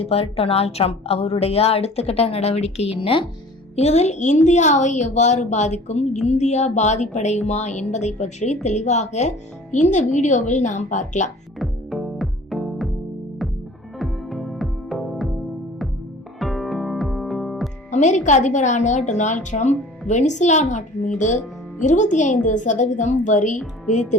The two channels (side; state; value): both; normal; correlation 0.46